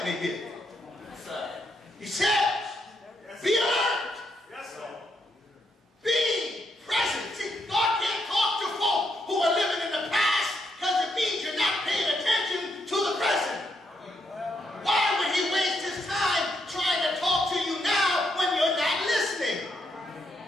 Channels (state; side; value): normal; both; correlation 0.78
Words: me here. He says, be alert. Be present. See, God can't talk to folk who are living in the past because it means you're not paying attention to the present. Why would he waste his time trying to talk to you now when you're not listening?